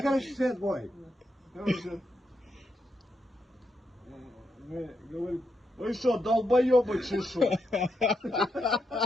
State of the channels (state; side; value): normal; both; correlation 0.82